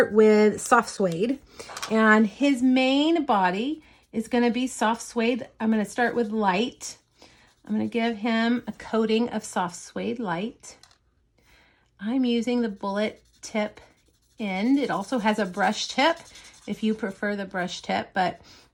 with soft suede, and his main body is going to be soft suede. I'm going to start with light. I'm going to give him a coating of soft suede light. I'm using the bullet tip end. It also has a brush tip if you prefer the brush tip, but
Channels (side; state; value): both; identical; correlation 1.00